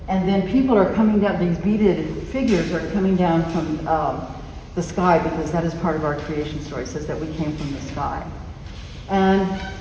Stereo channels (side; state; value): both; identical; correlation 1.00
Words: And then people are coming down, these beaded figures are coming down from the sky, because that is part of our creation story. It says that we came from the sky. And